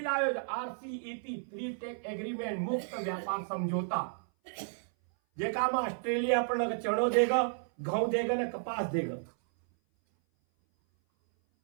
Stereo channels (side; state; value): left; silent; 56 dB below the other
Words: आयो आरसीईपी फ्री टेक एग्रीमेंट मुक्त व्यापार समझौता जेका में ऑस्ट्रेलिया अपन चणो देगा घऊ देगा न कपास देगा